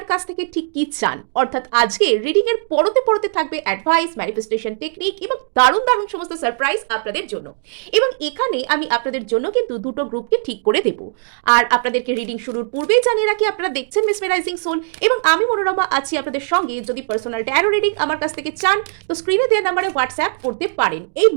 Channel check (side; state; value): left; silent; digital silence